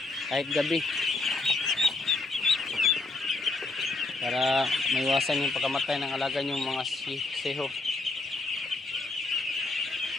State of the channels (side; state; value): right; quieter; 3.3 dB